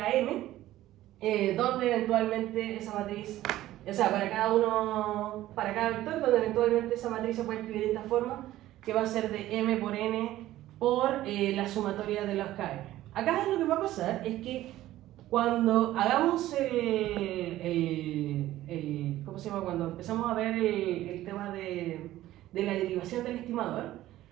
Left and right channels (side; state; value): left; quieter; 14.8 dB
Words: donde eventualmente esa matriz, o sea, para cada vector, donde eventualmente esa matriz se puede escribir de esta forma, que va a ser de m por n por la sumatoria de los km. Acá lo que va a pasar es que cuando hagamos ¿cómo se llama? Cuando empezamos a ver el tema de la derivación del estimador,